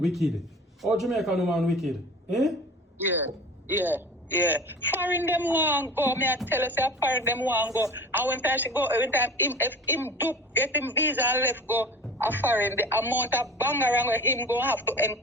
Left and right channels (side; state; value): both; normal; correlation 0.39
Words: wicked. Oh, Jamaican woman wicked. Eh? Yeah. Foreign them want go. Me I tell us that foreign them want go. And when time she go, every time if him do get him visa and left go a foreign, the amount of bangarang where him go have to